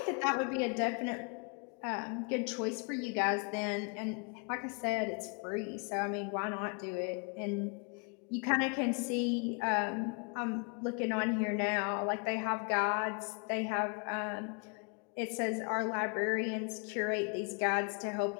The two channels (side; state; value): right; quieter; 36.9 dB